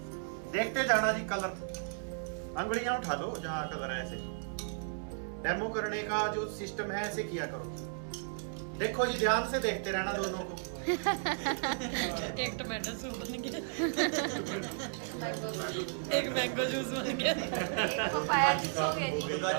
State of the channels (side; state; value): left; silent; 55 dB below the other